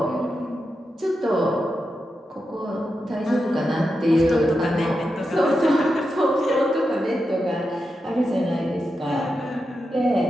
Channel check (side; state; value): both; normal; correlation 0.88